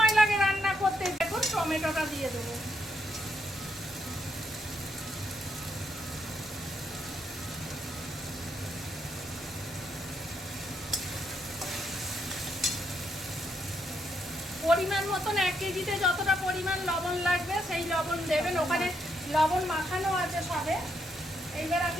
লাগে রান্না করতে। দেখুন টমেটোটা দিয়ে দেবো। পরিমাণ মতন 1 কেজিতে যতটা পরিমাণ লবণ লাগবে সেই লবণ দেবেন। ওখানে লবণ মাখানো আছে সবে। এইবার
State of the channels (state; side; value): normal; both; correlation 0.77